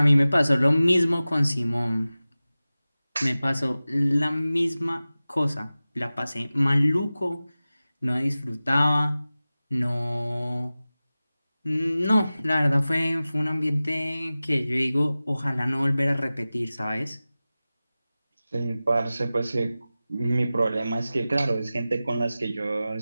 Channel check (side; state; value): both; inverted; correlation -0.96